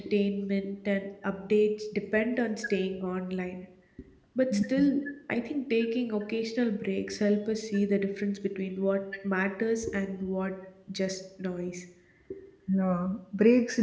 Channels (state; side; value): identical; both; correlation 1.00